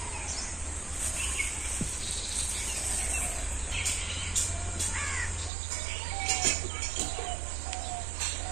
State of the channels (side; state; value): left; drops out; at 5.5 s